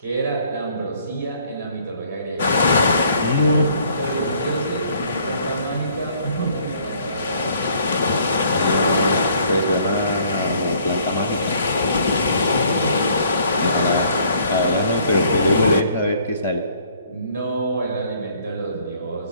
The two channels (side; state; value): both; inverted; correlation -0.61